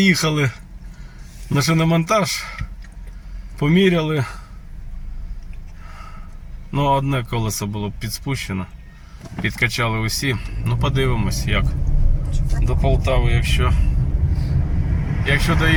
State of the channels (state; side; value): identical; both; correlation 1.00